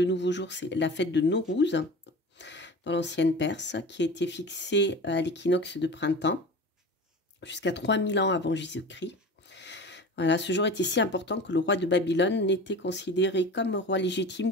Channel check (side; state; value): both; normal; correlation 0.34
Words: nouveau jour, c'est la fête de Nowruz, dans l'ancienne Perse, qui a été fixée à l'équinoxe de printemps, jusqu'à 3000 ans avant Jésus-Christ. Voilà, ce jour était si important que le roi de Babylone n'était considéré comme roi